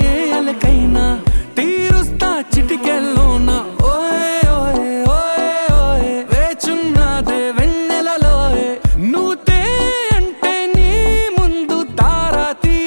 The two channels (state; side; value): inverted; both; correlation -1.00